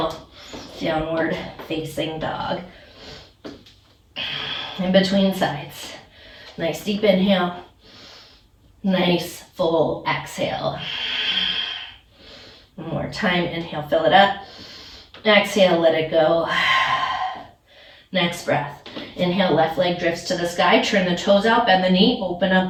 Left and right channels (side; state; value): both; identical; correlation 1.00